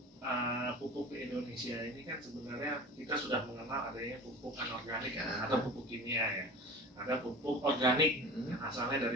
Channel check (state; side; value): normal; both; correlation 0.36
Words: pupuk di Indonesia ini kan sebenarnya kita sudah mengenal adanya pupuk anorganik atau pupuk kimia ya. Ada pupuk organik yang asalnya